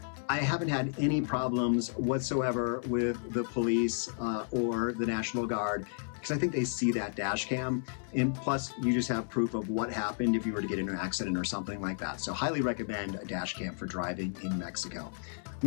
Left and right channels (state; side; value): silent; right; 56 dB below the other